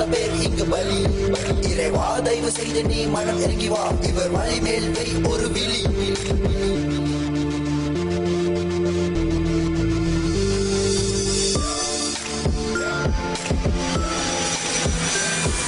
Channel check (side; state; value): both; identical; correlation 1.00